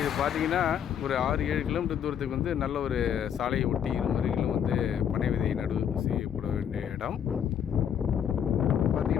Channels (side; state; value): right; quieter; 8.8 dB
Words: பார்த்திங்கன்னா ஒரு 6-7 கிலோமீட்டர் தூரத்துக்கு நல்ல ஒரு சாலையை ஒட்டி இருமருகிலும் பனை விதை நடவு செய்யப்பட வேண்டிய இடம்.